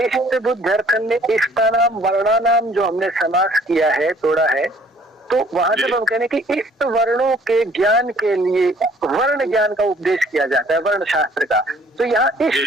बुद्ध्यर्थन में इष्टानाम वर्णानाम जो हमने समास किया है, तोड़ा है, तो वहां जब हम कहने कि इष्ट वर्णों के ज्ञान के लिए वर्ण ज्ञान का उपदेश किया जाता है, वर्ण शास्त्र का, तो यहाँ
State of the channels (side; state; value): both; normal; correlation 0.58